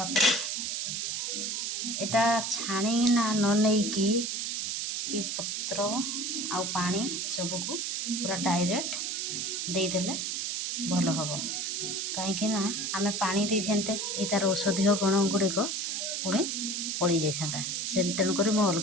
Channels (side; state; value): right; noise; hiss, 1 dB below the sound